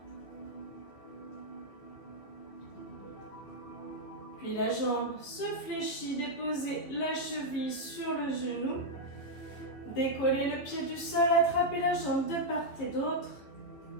Puis la jambe se fléchit, déposez la cheville sur le genou. Décollez le pied du sol, attrapez la jambe de part et d'autre.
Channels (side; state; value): right; late; 14 ms